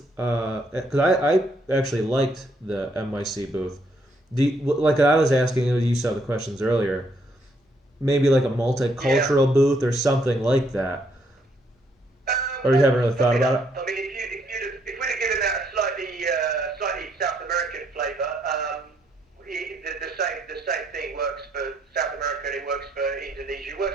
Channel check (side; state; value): both; normal; correlation 0.72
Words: Because I actually liked the MYC booth. Like I was asking you saw the questions earlier, maybe like a Yeah. multicultural booth or something like that. Or you Well, haven't really thought probably about not. it? I mean, if we'd have given that a slightly South American flavour, the same thing works for South America and it works for Indonesia. It